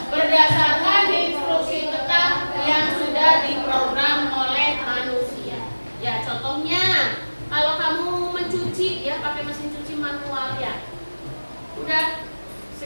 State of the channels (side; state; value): both; inverted; correlation -1.00